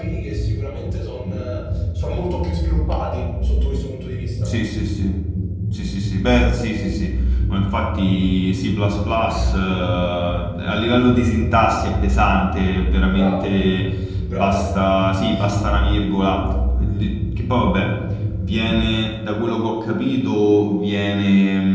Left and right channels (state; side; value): identical; both; correlation 1.00